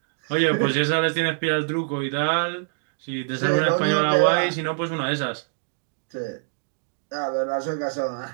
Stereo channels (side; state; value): left; silent; digital silence